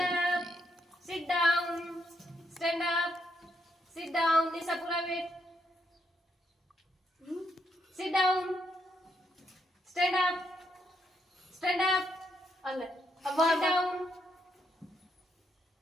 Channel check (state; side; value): normal; both; correlation 0.77